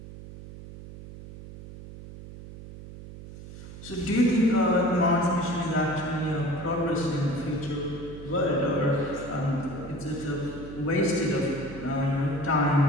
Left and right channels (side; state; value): right; noise; hum, 14 dB below the sound